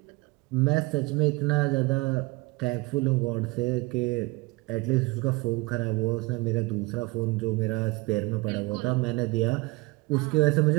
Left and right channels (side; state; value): left; quieter; 23.9 dB